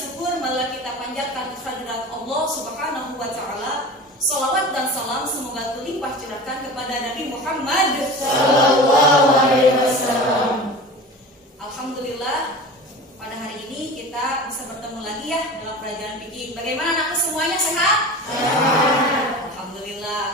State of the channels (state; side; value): normal; both; correlation 0.34